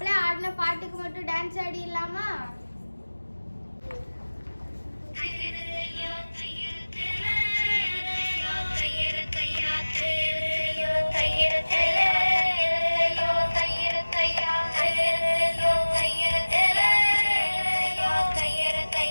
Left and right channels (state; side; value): inverted; both; correlation -1.00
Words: ஆடின பாட்டுக்கு மட்டும் டான்ஸ் ஆடிடலாமா?